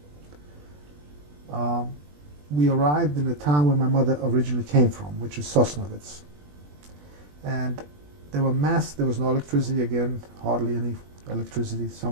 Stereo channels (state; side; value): late; left; 20 ms